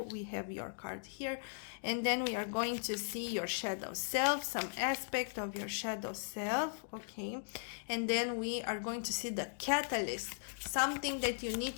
We have your card here. And then we are going to see your shadow self, some aspect of your shadow self, okay? And then we are going to see the catalyst, something that you need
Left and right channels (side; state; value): right; silent; digital silence